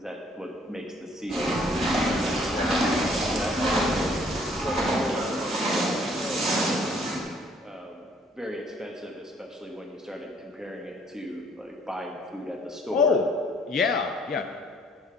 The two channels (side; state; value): both; normal; correlation 0.61